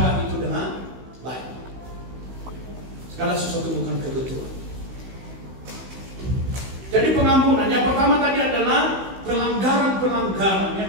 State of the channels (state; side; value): late; left; 16 ms